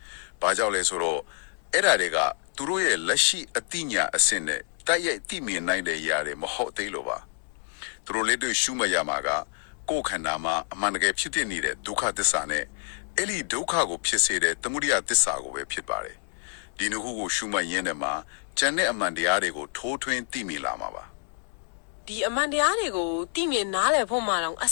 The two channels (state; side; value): silent; right; digital silence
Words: ။ဘာကြောင့်လဲဆိုတော့အဲ့ဒါတွေကသူတို့ရဲ့လက်ရှိအသိဉာဏ်အဆင့်နဲ့တိုက်ရိုက်သိမြင်နိုင်တဲ့ຢာတွေမဟုတ်သေးလို့ပါ။သူတို့လက်တွေ့ရှုမှတ်ရမှာကကိုယ်ခန္ဓာမှာအမှန်တကယ်ဖြစ်နေတဲ့ဒုက္ခသစ္စာနဲ့အဲ့ဒီဒုက္ခကိုဖြစ်စေတဲ့သမုဒိယသစ္စာကိုပဲဖြစ်ပါတယ်။ဒီနှစ်ခုကိုရှုမှတ်ရင်းနဲ့မှာကျန်တဲ့အမှန်တရားတွေကိုထိုးထွင်းသိမြင်လာမှာပါဒီအမှန်တရားတွေကိုသိမြင်နားလည်ဖို့မှတော့အ